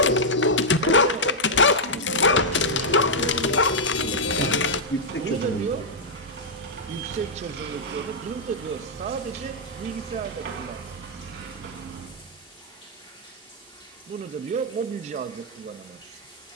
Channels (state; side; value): normal; both; correlation -0.05